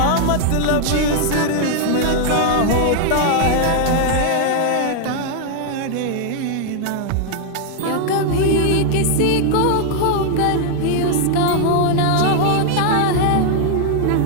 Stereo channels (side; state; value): both; different; correlation 0.00